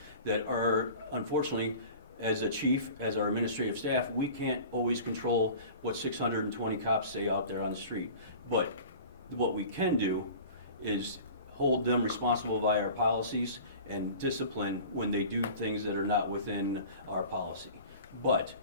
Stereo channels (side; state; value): both; inverted; correlation -0.40